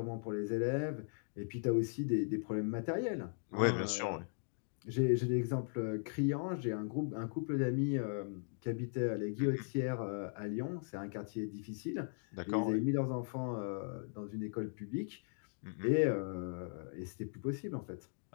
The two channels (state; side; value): silent; right; digital silence